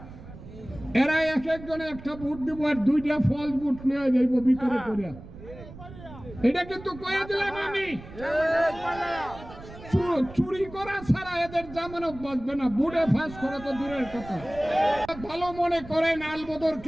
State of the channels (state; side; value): noise; right; rumble, 16 dB below the sound